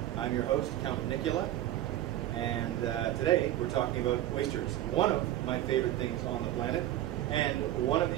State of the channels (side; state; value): left; quieter; 13.6 dB